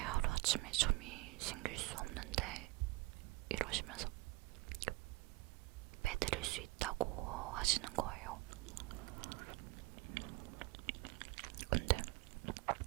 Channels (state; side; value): quieter; left; 21.3 dB